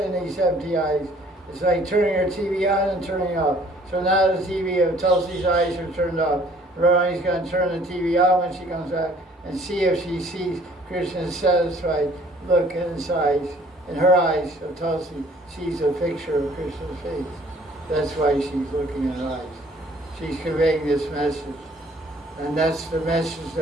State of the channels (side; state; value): both; normal; correlation 0.57